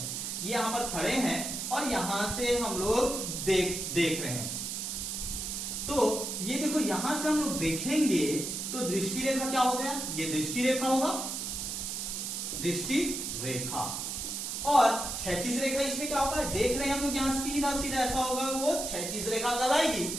ये यहां पर खड़े हैं और यहां से हम लोग देख रहे हैं। तो ये देखो, यहां से हम लोग देखेंगे तो दृष्टि रेखा क्या हो गया, ये दृष्टि रेखा होगा, दृष्टि रेखा। और क्षैतिज रेखा इसमें क्या होगा, देख रहे हैं हम लोग यहां सीधा ऐसा होगा, वो क्षैतिज रेखा कहलाएगी।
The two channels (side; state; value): right; noise; hiss, 4 dB below the sound